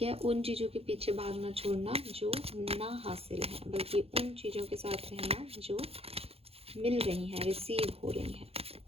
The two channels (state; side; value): late; left; 0.29 ms